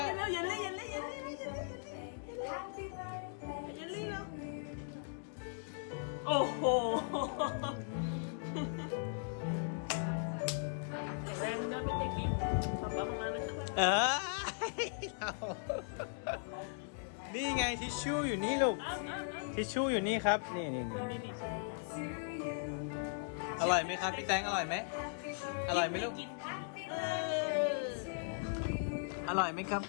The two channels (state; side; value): silent; right; digital silence